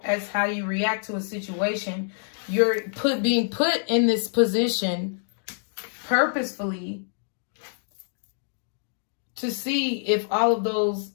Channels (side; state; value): right; silent; digital silence